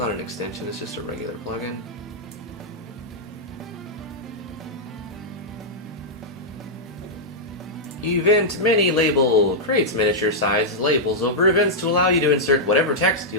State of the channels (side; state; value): both; normal; correlation -0.07